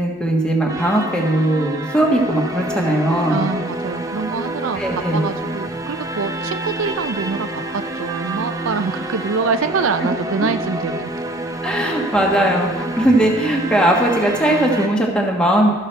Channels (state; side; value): normal; both; correlation 0.56